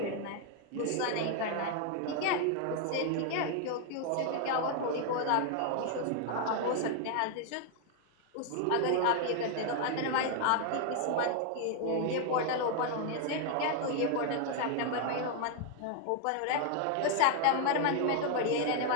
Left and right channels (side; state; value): both; different; correlation 0.00